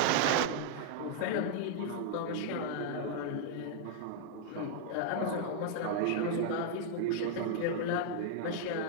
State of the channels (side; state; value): both; different; correlation -0.01